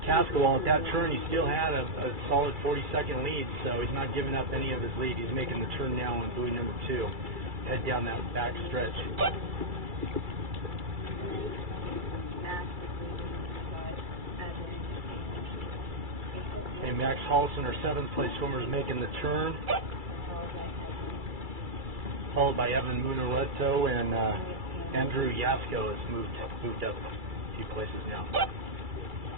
Cascawal, at that turn, he still had a solid 40-second lead, so he's not giving up any of his lead. He's making the turn now on buoy number 2. Head down that back stretch. And Max Hollison, our 7th place swimmer, is making the turn, followed by Evan Munareto, and Andrew Yasko has moved up a few places now.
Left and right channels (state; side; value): late; left; 2.3 ms